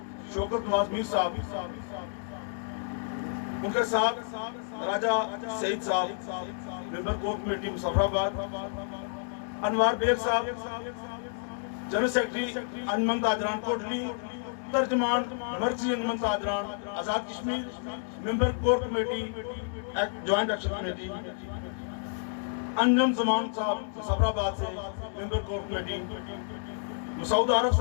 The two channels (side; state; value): right; silent; digital silence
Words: शौकत नवाज मीर साहब, उनके साथ Raja Saeed sahab member core committee Muzaffarabad, Anwar Baig sahab general secretary Anjuman Tajran Kotli, तर्जमान मर्कजी Anjuman Tajran Azad Kashmir member core committee joint action committee, Anjum Zaman sahab Muzaffarabad से member core committee, Masood Arif